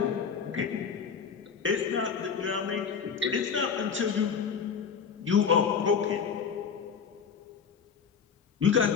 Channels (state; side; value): quieter; right; 6.5 dB